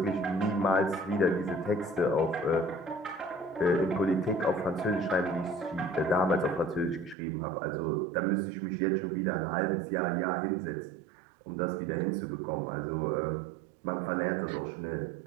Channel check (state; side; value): drops out; left; at 7.2 s